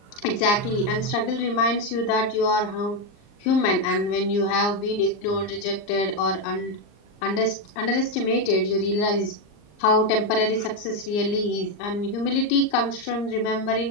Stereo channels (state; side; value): late; right; 39 ms